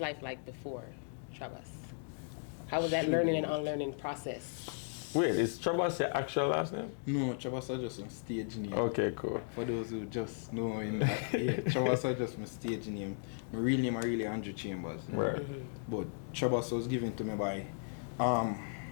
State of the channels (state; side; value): silent; right; digital silence